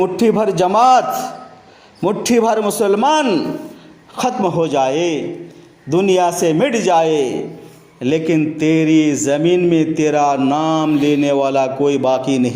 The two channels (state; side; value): identical; both; correlation 1.00